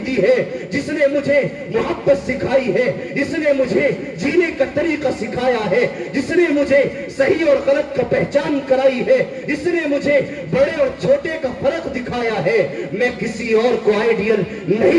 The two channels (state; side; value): identical; both; correlation 1.00